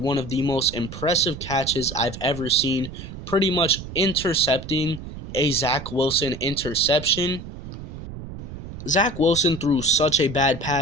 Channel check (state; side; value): noise; right; rumble, 11 dB below the sound